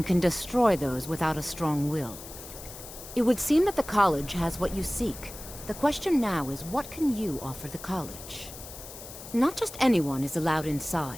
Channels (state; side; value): noise; left; hiss, 14 dB below the sound